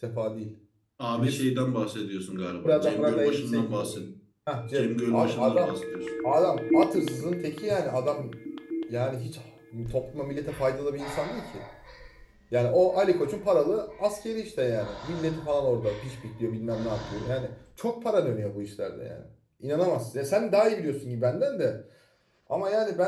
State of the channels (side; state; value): both; identical; correlation 1.00